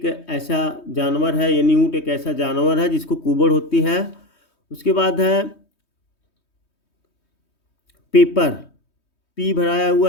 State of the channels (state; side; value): late; right; 3.2 ms